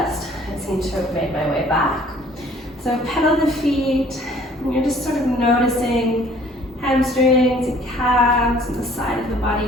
I seem to have made my way back. So pedal the feet, and you're just sort of noticing hamstrings and calves and the side of the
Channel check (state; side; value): normal; both; correlation 0.56